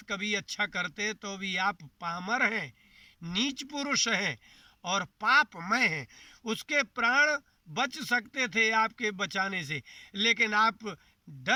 कभी अच्छा करते तो भी आप पामर हैं, नीच पुरुष हैं और पापमय हैं। उसके प्राण बच सकते थे आपके बचाने से, लेकिन आप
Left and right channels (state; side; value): identical; both; correlation 1.00